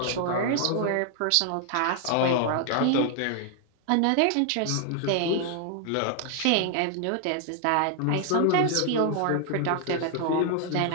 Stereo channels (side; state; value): both; different; correlation 0.00